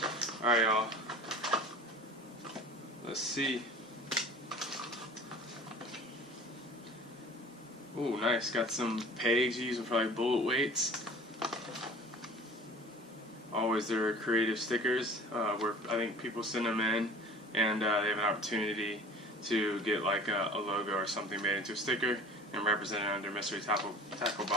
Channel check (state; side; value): normal; both; correlation 0.43